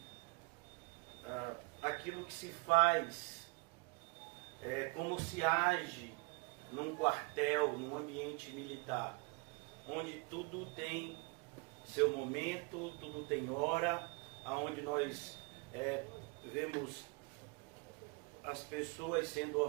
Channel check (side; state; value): left; quieter; 30.6 dB